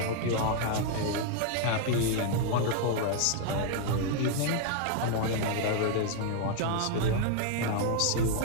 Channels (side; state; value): both; different; correlation 0.00